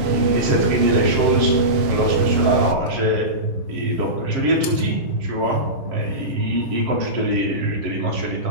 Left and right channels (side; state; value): left; late; 7.3 ms